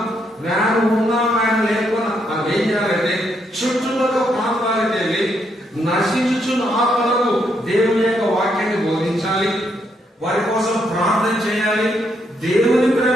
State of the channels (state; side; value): normal; both; correlation 0.76